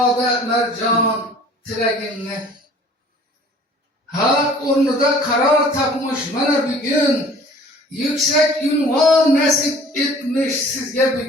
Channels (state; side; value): normal; both; correlation 0.50